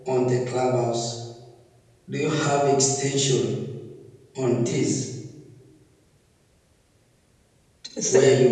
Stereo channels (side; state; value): both; identical; correlation 1.00